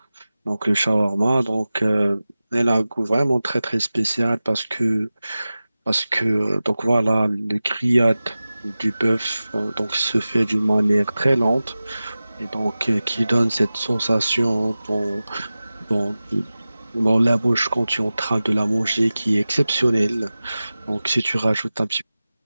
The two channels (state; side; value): inverted; both; correlation -0.96